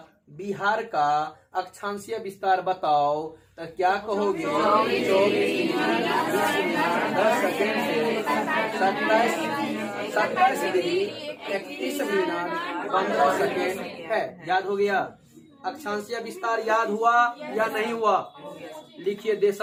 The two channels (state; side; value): identical; both; correlation 1.00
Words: बिहार का अक्षांशीय विस्तार बताओ, तो क्या कहोगे 24 डिग्री 20 मिनट 10 सेकेंड से 27 डिग्री 31 मिनट 15 सेकेंड है। याद हो गया। अक्षांशीय विस्तार याद हुआ या नहीं हुआ। लिखिए